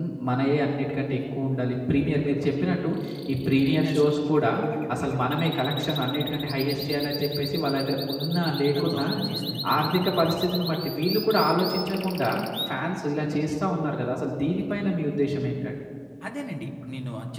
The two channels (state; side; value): identical; both; correlation 1.00